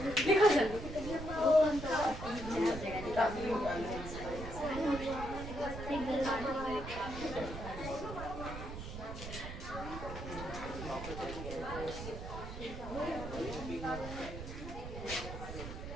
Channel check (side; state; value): right; noise; rumble, 8 dB below the sound